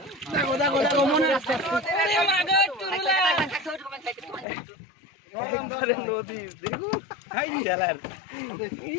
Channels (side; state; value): right; drops out; at 4.5 s